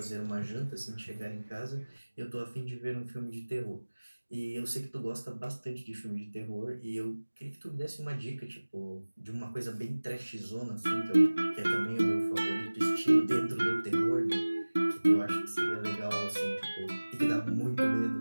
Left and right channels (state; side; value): inverted; both; correlation -1.00